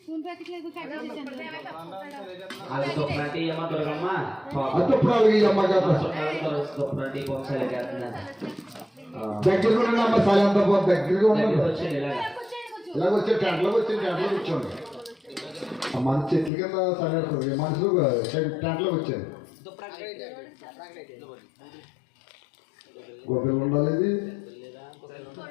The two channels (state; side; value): drops out; right; at 16.5 s